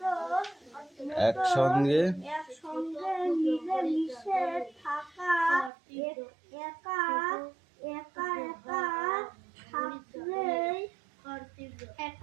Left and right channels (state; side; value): drops out; left; at 5.7 s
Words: একসঙ্গে মিলেমিশে থাকা, একা